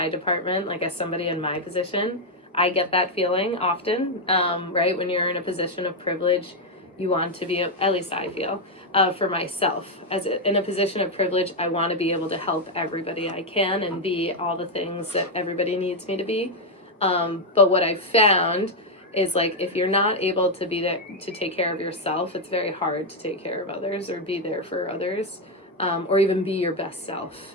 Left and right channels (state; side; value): normal; both; correlation 0.02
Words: department, like as somebody in my position, I get that feeling often, right? When you're in a position of privilege, you want to be, at least I feel, for myself. In a position of privilege, I want to be able to help everybody I can and be all the things that everybody needs me to be. But what I've found is like if you're not able to be there to take care of yourself, it's very hard to take care of others or be there for others, or even be your best self